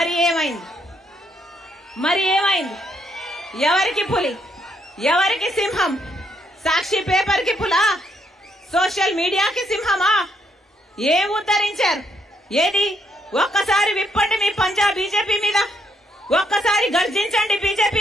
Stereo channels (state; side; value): normal; both; correlation 0.74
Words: ఏమైంది? ఎవరికి పులి, ఎవరికి సింహం? సాక్షి పేపర్ కి పులా, సోషల్ మీడియాకి సింహమా? ఏం ఉద్ధరించారు? ఏది? ఒక్కసారి విప్పండి మీ పంజా బీజేపీ మీద, ఒక్కసారి గర్జించండి